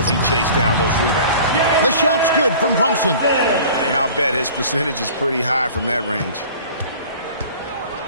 he chased down those rebounds. The shot's good from Brunson. And I'll bet his percentage is pretty high from that range.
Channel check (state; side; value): inverted; both; correlation -0.44